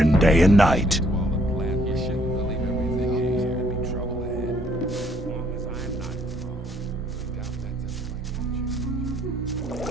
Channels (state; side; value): normal; both; correlation 0.66